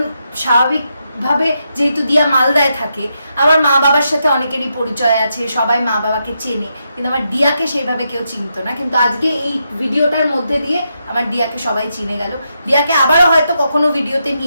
স্বাভাবিকভাবে যেহেতু দিয়া মালদায় থাকে, আমার মা বাবার সাথে অনেকেরই পরিচয় আছে, সবাই মা বাবাকে চেনে, কিন্তু আমার দিয়াকে সেইভাবে কেউ চিনতো না। কিন্তু আজকে এই ভিডিওটার মধ্যে দিয়ে আমার দিয়াকে সবাই চিনে গেল। দিয়াকে আবারও হয়তো কখনো ভিডিওতে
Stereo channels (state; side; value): inverted; both; correlation -0.83